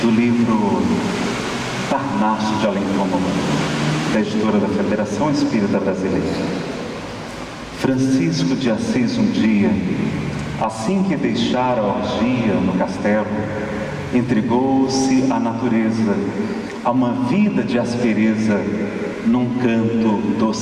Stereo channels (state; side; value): identical; both; correlation 1.00